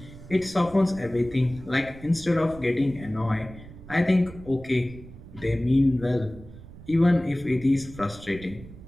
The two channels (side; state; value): right; noise; rumble, 17 dB below the sound